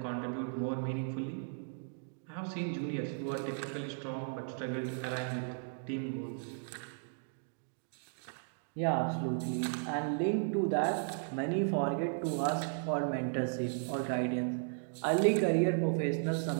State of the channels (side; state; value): left; silent; digital silence